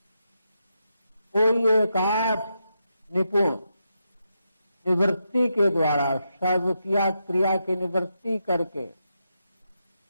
कोई एकाध निपुण निवृत्ति के द्वारा सर्वक्रिया की निवृत्ति करके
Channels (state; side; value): inverted; both; correlation -0.84